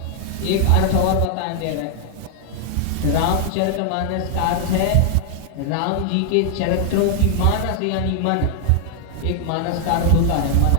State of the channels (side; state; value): both; different; correlation 0.00